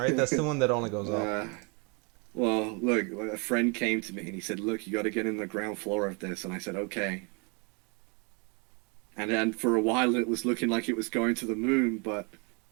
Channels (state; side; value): quieter; left; 32.9 dB